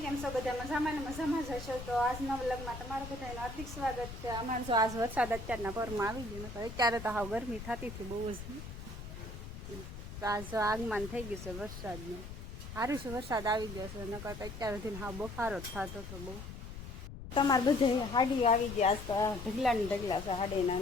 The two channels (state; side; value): noise; left; rumble, 10 dB below the sound